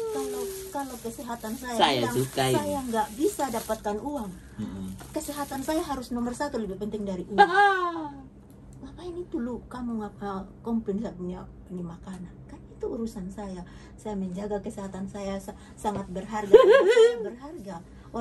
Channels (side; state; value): both; identical; correlation 1.00